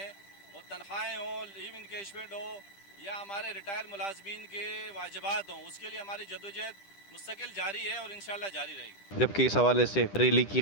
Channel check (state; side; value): late; right; 10 ms